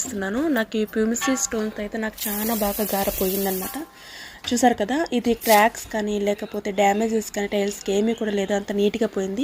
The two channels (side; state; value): both; identical; correlation 1.00